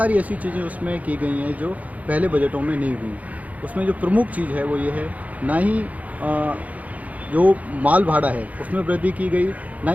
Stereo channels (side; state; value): left; late; 0.072 ms